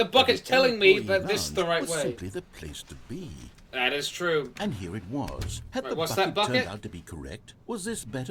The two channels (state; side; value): identical; both; correlation 1.00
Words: that bucket's the telling me employee that this is the lounge right was way. simply the place to be. That is true. And here it was. Had Right, the what's bucket that bucket? turned out to be correct? Was this